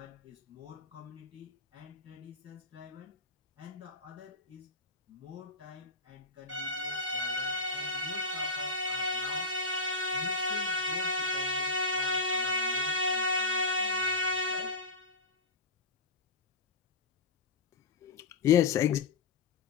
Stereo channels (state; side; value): quieter; right; 3.4 dB